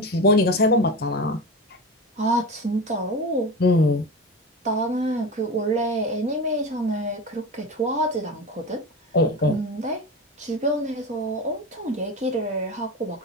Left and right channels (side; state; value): both; normal; correlation 0.26